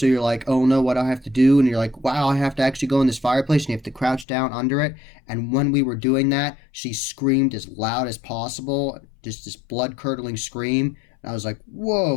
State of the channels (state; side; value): drops out; right; at 4.2 s